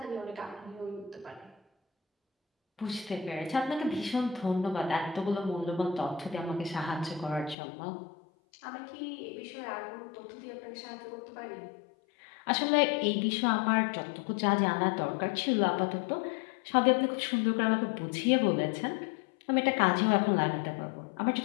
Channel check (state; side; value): drops out; right; at 7.6 s